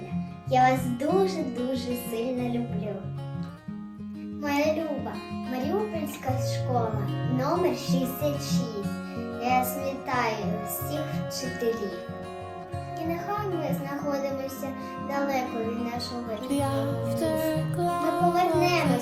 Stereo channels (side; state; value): both; identical; correlation 1.00